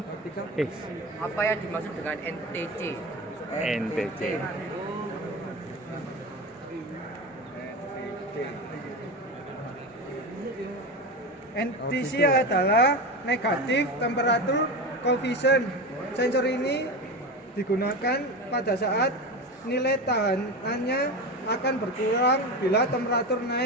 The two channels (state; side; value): normal; both; correlation 0.23